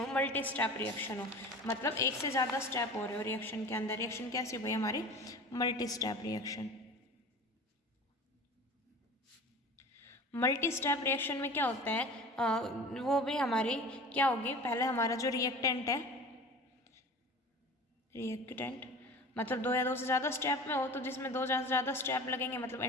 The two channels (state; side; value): normal; both; correlation 0.38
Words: मल्टी स्टेप रिएक्शन हो, मतलब एक से ज़्यादा स्टेप हो रहे हो रिएक्शन के अंदर, रिएक्शन कैसी हो भाई हमारी, multi step reaction. Multi step reaction में क्या होता है, वो भी हमारी क्या होगी, पहले हमारा जो रिएक्टेंट है, रिएक्टेंट मतलब दो या दो से ज़्यादा स्टेप में हो, तो जिसमें दो से ज़्यादा स्टेप लगेंगे मतलब